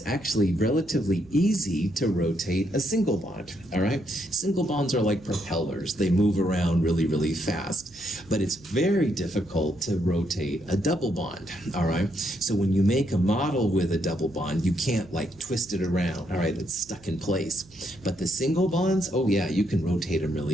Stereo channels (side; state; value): right; noise; hum, 25 dB below the sound